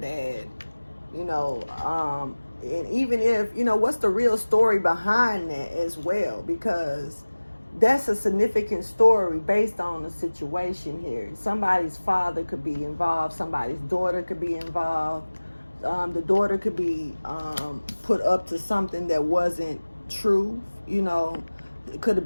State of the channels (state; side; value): inverted; both; correlation -1.00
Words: you know, and even if, you know, what's the real story behind that as well, because that's a significant story based on the situation here. Somebody's father could be involved, somebody's daughter could be involved. The daughter could be put up to something that wasn't true, you know. It could have